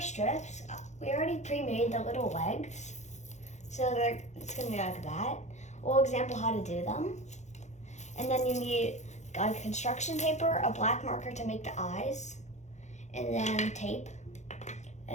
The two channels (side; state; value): right; late; 0.34 ms